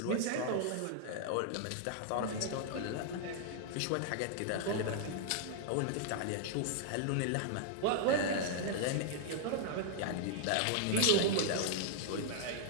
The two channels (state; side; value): different; both; correlation -0.01